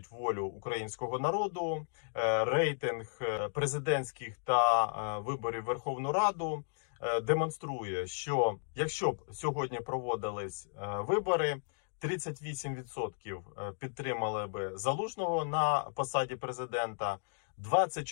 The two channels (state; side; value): silent; right; digital silence